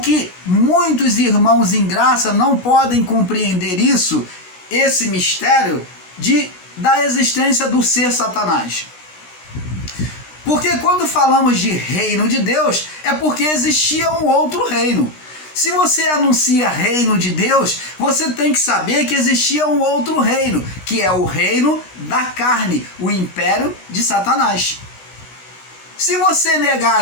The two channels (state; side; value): late; right; 16 ms